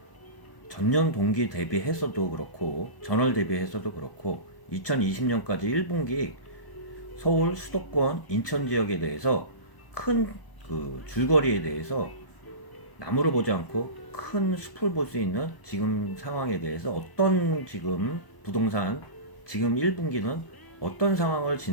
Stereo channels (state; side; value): late; right; 1.0 ms